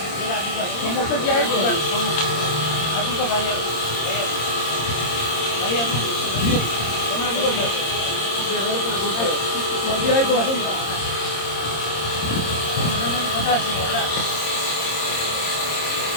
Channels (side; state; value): right; late; 26 ms